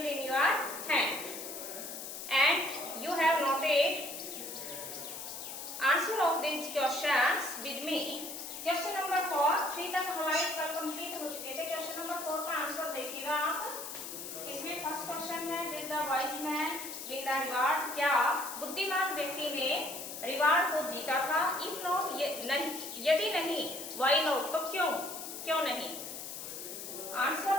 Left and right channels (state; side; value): noise; left; hiss, 8 dB below the sound